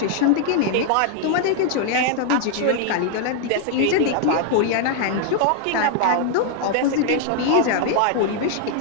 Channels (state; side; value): different; both; correlation 0.00